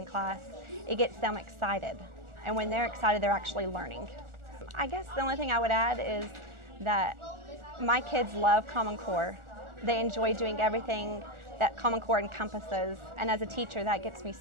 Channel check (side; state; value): left; late; 1.4 ms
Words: class, it gets them excited. And when they're excited, they're actually learning. I guess the only thing I would add is that my kids love Common Core. They enjoy doing everything that Common Core encompasses, and as a teacher, that gets me